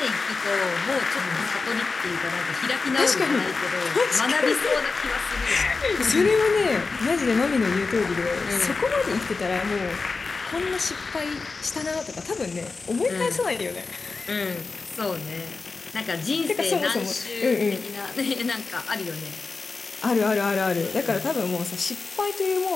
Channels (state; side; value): quieter; right; 4.2 dB